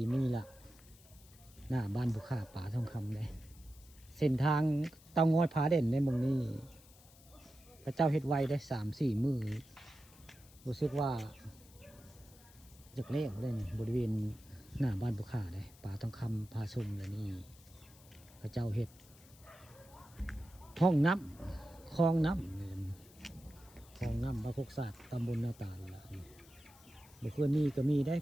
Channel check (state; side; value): noise; left; hiss, 24 dB below the sound